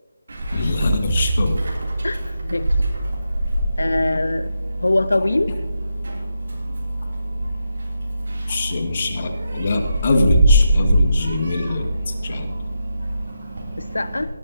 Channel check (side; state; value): both; inverted; correlation -0.85